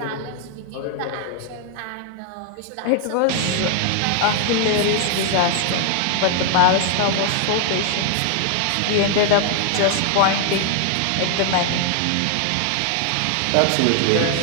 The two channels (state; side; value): different; both; correlation 0.00